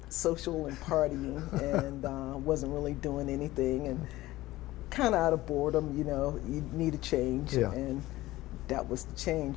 social and partying, and wasn't really doing anything, and kind of out of boredom. You need a change, and that was the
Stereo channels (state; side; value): quieter; right; 17.2 dB